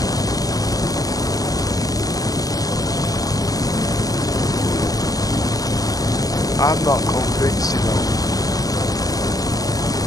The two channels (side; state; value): right; late; 0.17 ms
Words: I'm not convinced, you know.